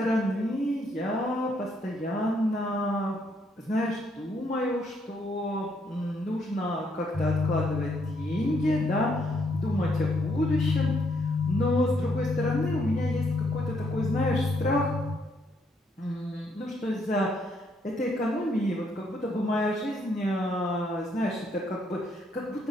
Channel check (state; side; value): normal; both; correlation 0.73